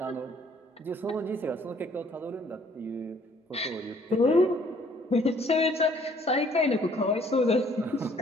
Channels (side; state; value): both; normal; correlation 0.60